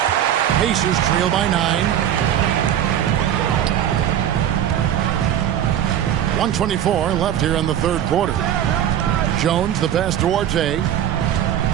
Pacers trail by 9. 1:24 left here in the 3rd quarter. Jones, the pass to Duarte.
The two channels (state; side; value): quieter; left; 10.6 dB